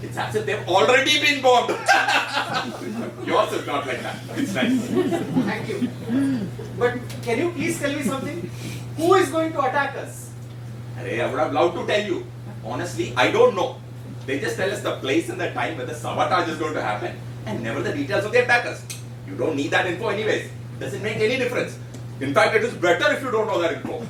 it's as if they've already been bombed. Yours is not like that. It's nice. Thank you. But can you please tell me something? Who is going to attack us? Arey, I would have loved to tell you. Honestly, I don't know. They just tell us the place and the time where the sabotage is going to happen and never the details of the attackers. You don't need that info anyways. Doesn't make any difference. In fact, it is better if you don't know that info.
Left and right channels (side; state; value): both; identical; correlation 1.00